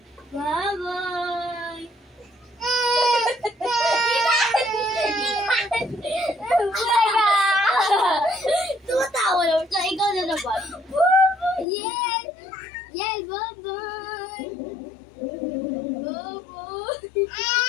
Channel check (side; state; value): right; drops out; at 11.7 s